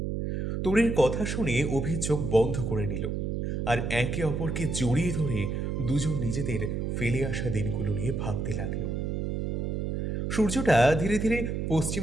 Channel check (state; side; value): noise; right; hum, 1 dB below the sound